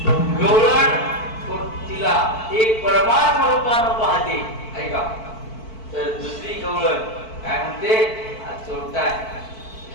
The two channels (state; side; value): late; right; 4.5 ms